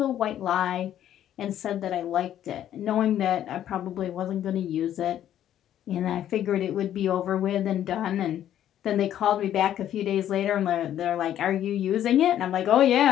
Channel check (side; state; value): right; quieter; 11.2 dB